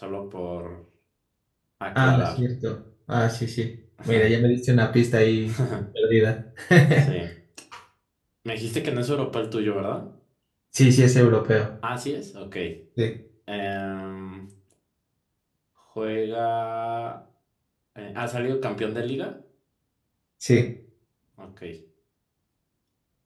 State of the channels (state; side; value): identical; both; correlation 1.00